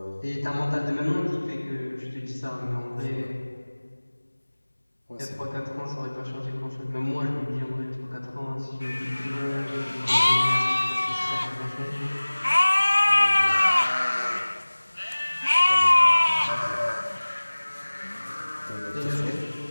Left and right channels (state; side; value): inverted; both; correlation -1.00